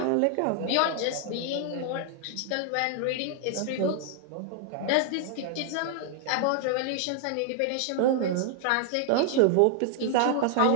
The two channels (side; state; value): both; different; correlation 0.00